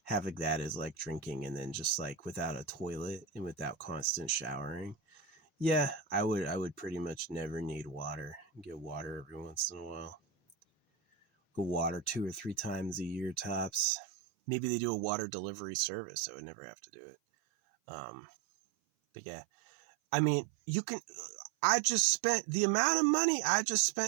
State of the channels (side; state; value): left; drops out; at 13.9 s